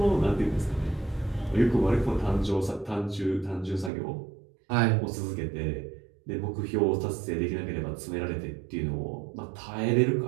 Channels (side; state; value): left; drops out; at 3.9 s